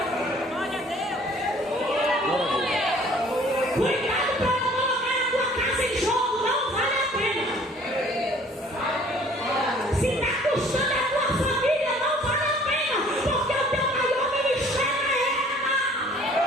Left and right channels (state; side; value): normal; both; correlation 0.54